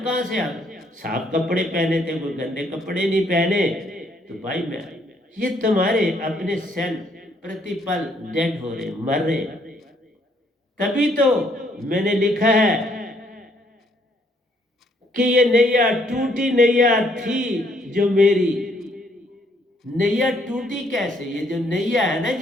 से आ गई? साफ कपड़े पहने थे, कोई गंदे कपड़े नहीं पहने, तो भाई मैं, ये तुम्हारे अपने सेल प्रतिपल डेड हो रहे, मर रहे। तभी तो मैंने लिखा है कि ये नैया टूटी नैया थी जो मेरी। नैया टूटी कैसे? ये जो नैया है ना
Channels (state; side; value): normal; both; correlation 0.68